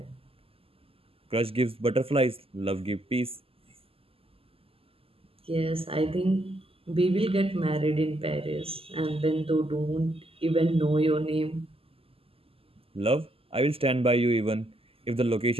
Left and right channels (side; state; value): left; late; 0.28 ms